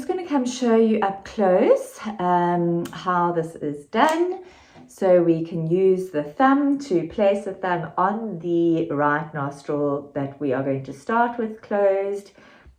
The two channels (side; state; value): both; identical; correlation 1.00